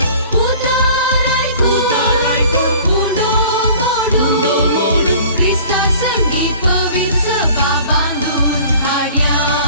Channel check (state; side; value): inverted; both; correlation -0.47